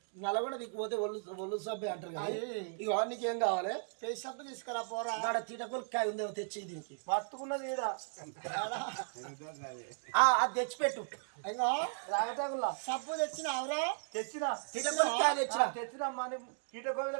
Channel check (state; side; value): silent; left; digital silence